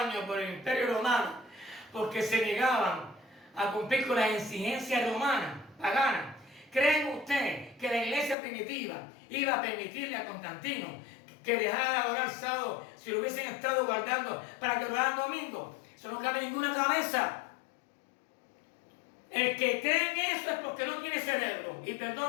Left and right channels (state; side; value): drops out; right; at 8.3 s